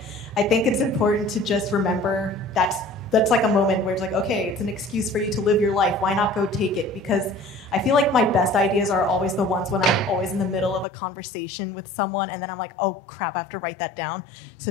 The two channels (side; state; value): right; drops out; at 10.9 s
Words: I think it's important to just remember that's like a moment where it's like, okay, it's an excuse for you to live your life. Why not go take it? Because I feel like my best ideas are always the ones when I'm always in the middle of a conversation with someone and then I'm like, oh crap, I have to write that down. So